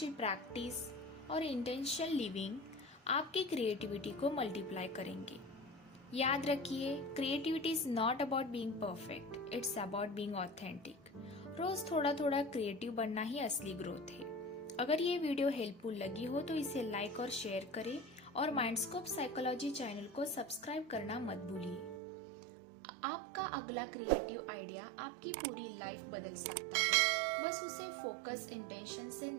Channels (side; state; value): left; drops out; at 22.0 s